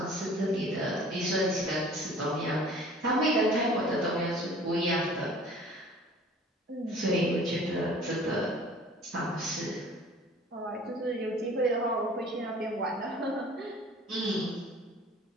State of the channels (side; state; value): both; normal; correlation 0.48